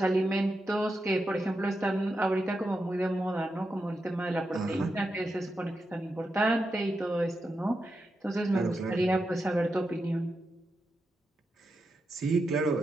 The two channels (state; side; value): normal; both; correlation 0.87